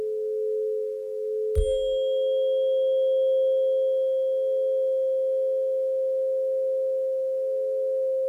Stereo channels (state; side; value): identical; both; correlation 1.00